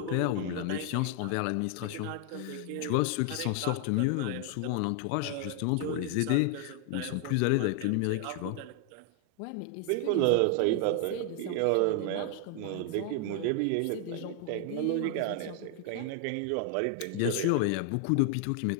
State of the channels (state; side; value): different; both; correlation 0.00